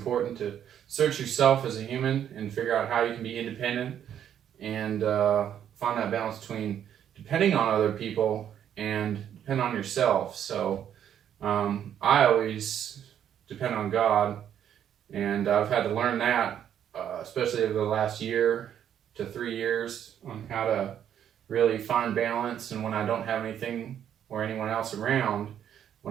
to search yourself as a human and figure out how you can be independent and find that balance between depending on other people and depend on yourself. So I always depend on God, and I've had to learn that, especially over the last year to 3 years, on how to really find balance. And when I don't have anything or anyone else around,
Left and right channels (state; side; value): quieter; left; 9.7 dB